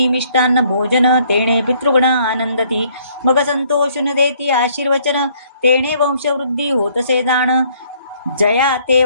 मिष्टान्न भोजन तेणे पितृगण आनंदती मग संतोषून देती आशीर्वचन तेणे वंशवृद्धी होतसे जाण जया ते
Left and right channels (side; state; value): both; inverted; correlation -0.63